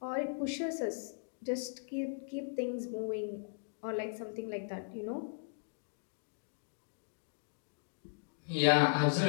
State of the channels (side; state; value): right; silent; digital silence